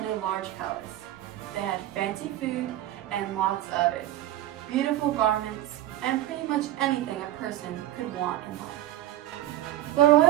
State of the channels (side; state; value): left; quieter; 13.9 dB